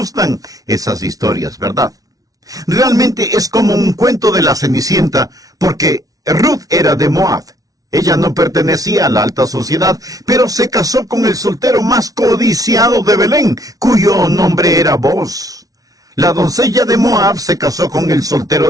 esas historias, ¿verdad? Realmente es como un cuento de la Cenicienta, porque Ruth era de Moab. Ella no pertenecía a la alta sociedad, pero se casó con el soltero más codiciado de Belén, cuyo nombre era Boaz. La doncella de Moab se casó con el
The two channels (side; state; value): left; late; 0.18 ms